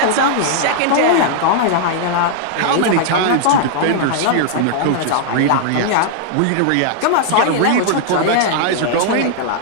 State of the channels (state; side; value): different; both; correlation -0.01